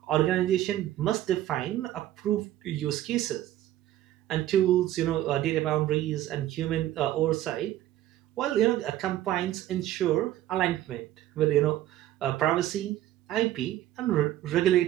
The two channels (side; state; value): left; quieter; 13.5 dB